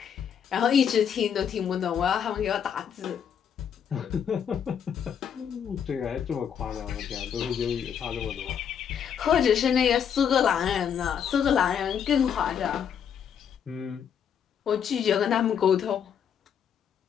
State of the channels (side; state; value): right; quieter; 8.1 dB